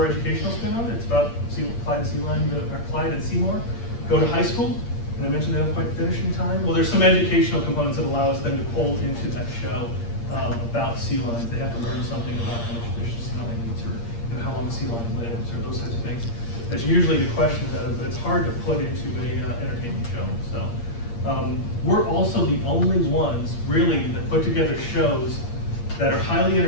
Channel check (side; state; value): right; late; 8.6 ms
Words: educational spin on it. It's about Clyde and Seymour go to high school, and I mentioned they don't quite finish in time. Well, there's some educational components that allow us then to pull into that show about sea lions. They have to learn something about how much fish a sea lion eats, or how long a sea lion lives, or those types of things that you usually get questions out of, but it's hard to put into a entertainment show. So we're also the only ones really that put together shows that are highly